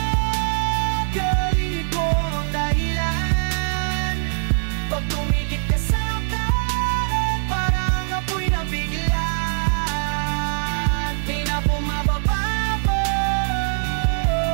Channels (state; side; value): silent; left; digital silence